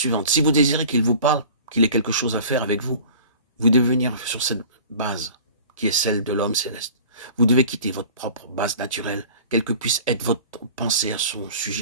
Si vous désirez qu'il vous parle, qu'il ait quelque chose à faire avec vous, vous devez venir sur cette base qui est celle de l'homme céleste. Vous devez quitter votre propre base naturelle, quelle que puisse être votre pensée à son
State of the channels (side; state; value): both; inverted; correlation -0.42